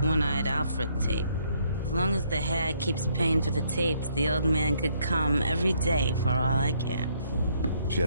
One-Eyed Alfred tape. As long as the hag keeps paying for the tapes, the old man could come every day for all I care. She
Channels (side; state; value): both; inverted; correlation -0.69